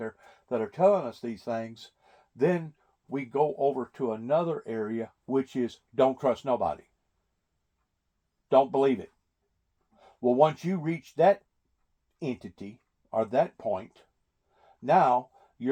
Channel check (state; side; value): identical; both; correlation 1.00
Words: that are telling us these things, then we go over to another area, which is don't trust nobody. Don't believe it. Well, once you reach that entity or that point, now